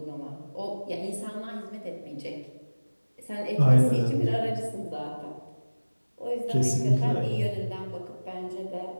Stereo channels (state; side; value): inverted; both; correlation -1.00